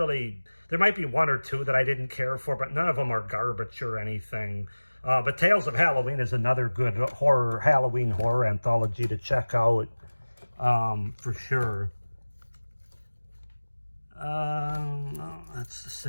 there might be 1 or 2 that I didn't care for, but none of them are garbage or anything. But Tales of Halloween is another good Halloween horror anthology to check out, for sure. No, that's the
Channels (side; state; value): both; inverted; correlation -1.00